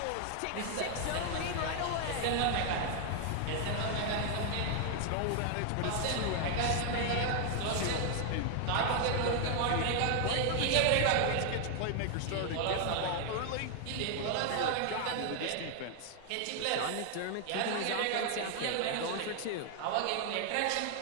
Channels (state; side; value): different; both; correlation 0.00